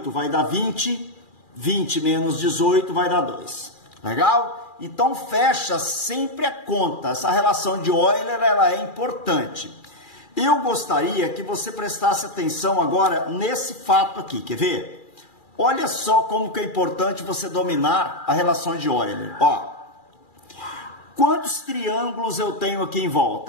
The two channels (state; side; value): late; right; 2.4 ms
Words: vai dar 20. 20 menos 18 vai dar 2. Legal? Então fecha sempre a conta. Essa relação de Euler, ela é importante. Eu gostaria que você prestasse atenção agora nesse fato aqui. Quer ver? Olha só como que é importante você dominar a relação de Euler. Ó. Quantos triângulos eu tenho aqui em